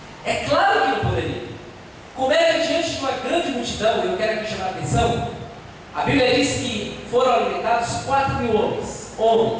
É claro que não poderia. Como é que diante de uma grande multidão, eu quero aqui chamar a atenção, a Bíblia diz que foram alimentados 4.000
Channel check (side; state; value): both; identical; correlation 1.00